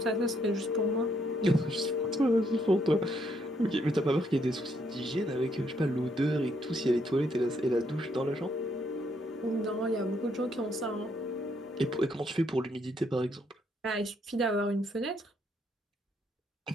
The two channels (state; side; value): normal; both; correlation 0.73